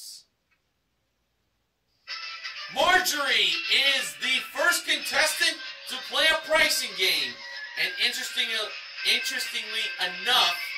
Marjorie is the first contestant to play a pricing game. And interestingly enough,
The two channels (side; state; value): both; identical; correlation 1.00